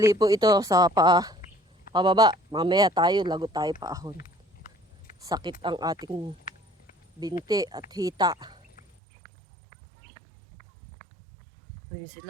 po ito sa pababa. Mamaya tayo, lagot tayo paahon. Sakit ang ating binti at hita. Ayun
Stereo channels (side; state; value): left; drops out; at 8.8 s